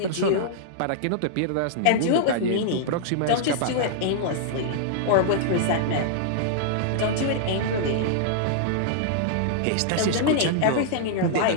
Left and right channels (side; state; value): both; different; correlation -0.02